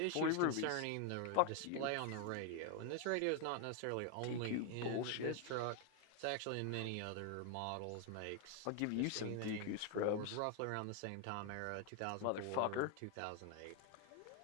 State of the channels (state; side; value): different; both; correlation 0.00